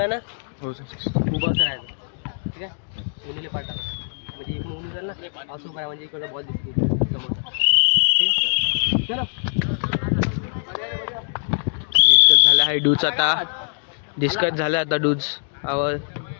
ना उभा असं राहायचं. ठीक आहे कोणीला पाठवा म्हणजे इकडून उभी राहिल ना असं काय म्हणजे इकडे बॉल दिसते समोरचा. ठीक आहे चलो. डिस्कस झाला आहे डूज. आता डिस्कस झाला आता डूज आवर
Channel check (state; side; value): silent; right; digital silence